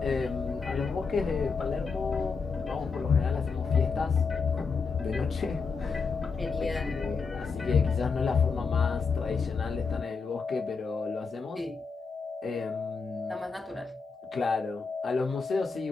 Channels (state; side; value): quieter; right; 5.0 dB